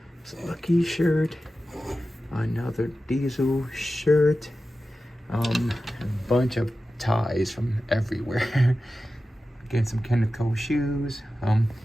It's a Lucky shirt. Another Diesel shirt. A bunch of ties from everywhere. Again, some Kenneth Cole shoes.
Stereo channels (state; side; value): normal; both; correlation 0.94